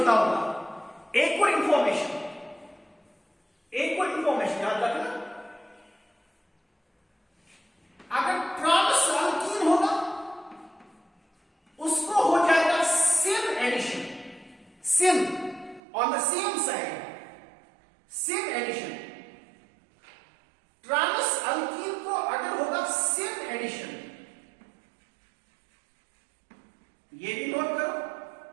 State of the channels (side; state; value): left; drops out; at 15.8 s